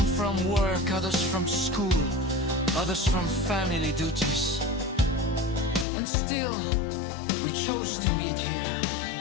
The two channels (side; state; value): right; drops out; at 5.9 s